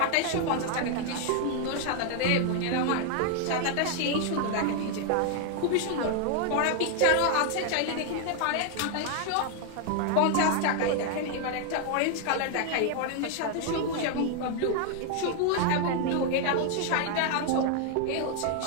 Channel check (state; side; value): different; both; correlation 0.00